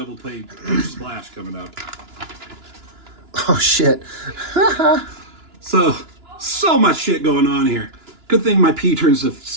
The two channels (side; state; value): left; late; 2.9 ms